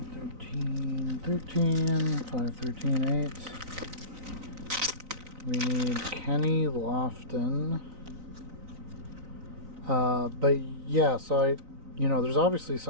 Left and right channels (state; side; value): late; left; 3.9 ms